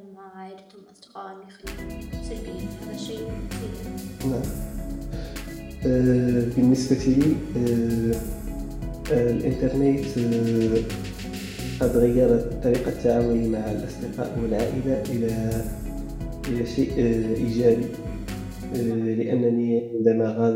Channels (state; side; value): identical; both; correlation 1.00